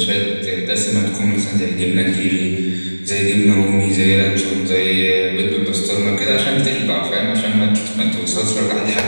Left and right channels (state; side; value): inverted; both; correlation -1.00